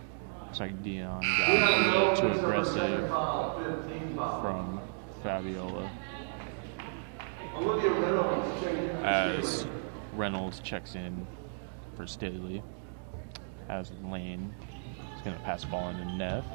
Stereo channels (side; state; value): left; silent; digital silence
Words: looks like Dion got a little too aggressive from Fabiola as Reynolds checks in for Staley, as Lane is going to pass the ball into Neff,